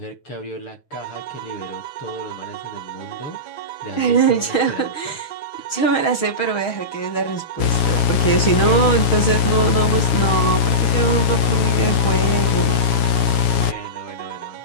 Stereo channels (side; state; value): right; late; 7.2 ms